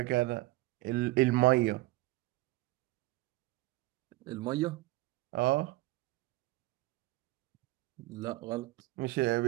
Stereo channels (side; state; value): left; quieter; 19.4 dB